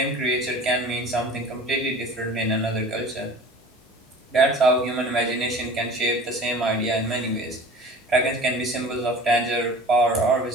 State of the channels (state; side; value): normal; both; correlation 0.41